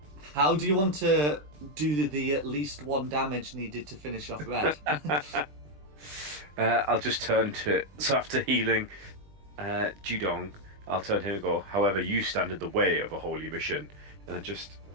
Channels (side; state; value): left; late; 20 ms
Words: how do you want to do the at least 1 damage needed to finish off Red? I'll just turn to. So after healing Judong, I'll turn to him and go, however, you stand in the way of a holy mission. And I just